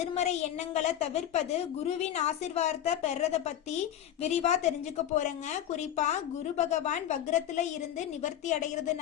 எண்ணங்களை தவிர்ப்பது, குருவின் ஆசீர்வாதத்தை பெறத பத்தி விரிவா தெரிஞ்சுக்க போறேங்க. குறிப்பா குரு பகவான் வக்ரத்துல இருந்து நிவர்த்தி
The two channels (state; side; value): quieter; right; 11.0 dB